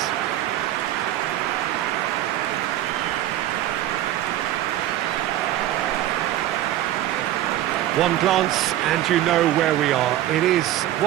One glance and you know where we are. It is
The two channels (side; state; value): left; quieter; 13.5 dB